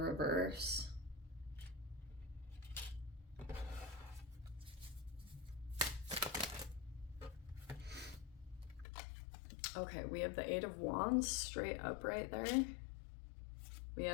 Okay, we have the Eight of Wands straight up right there. We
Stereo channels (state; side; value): drops out; right; at 8.8 s